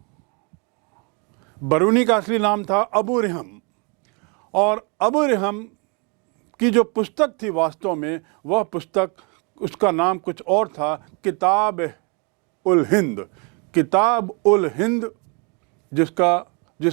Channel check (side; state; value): left; quieter; 33.5 dB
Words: बरूनी का असली नाम था अबू रिहम। और अबू रिहम की जो पुस्तक थी, वास्तव में वह पुस्तक, उसका नाम कुछ और था, किताब उल हिंद। किताब उल हिंद,